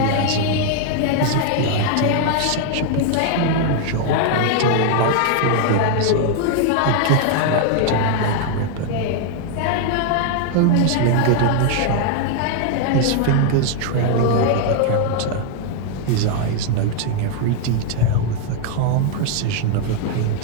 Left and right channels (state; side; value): different; both; correlation 0.00